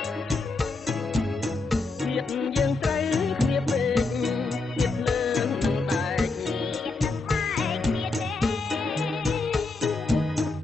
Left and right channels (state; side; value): quieter; right; 3.6 dB